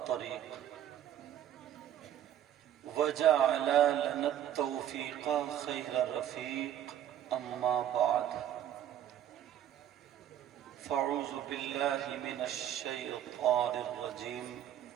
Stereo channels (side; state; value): left; quieter; 11.0 dB